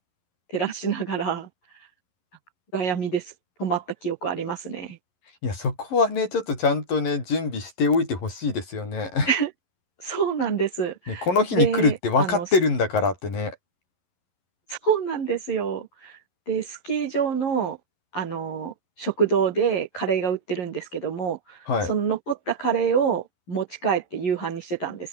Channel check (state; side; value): late; right; 11 ms